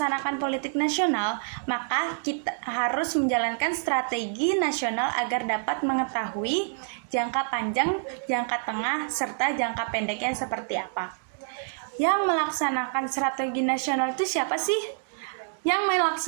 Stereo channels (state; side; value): silent; left; digital silence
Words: politik nasional, maka kita harus menjalankan strategi nasional agar dapat mengetahui jangka panjang, jangka tengah, serta jangka pendeknya seperti apa. Yang melaksanakan strategi nasional itu siapa sih? Yang